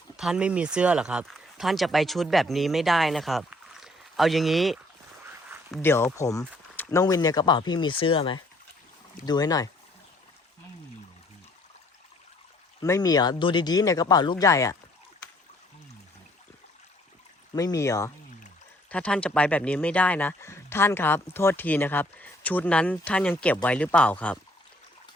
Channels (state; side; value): normal; both; correlation 0.62